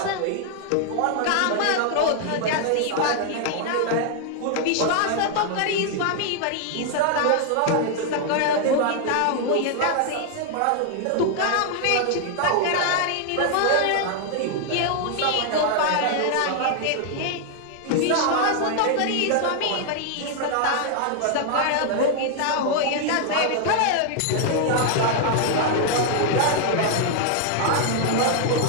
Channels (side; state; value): both; different; correlation 0.00